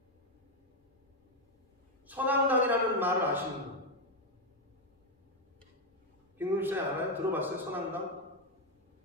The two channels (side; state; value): both; normal; correlation 0.04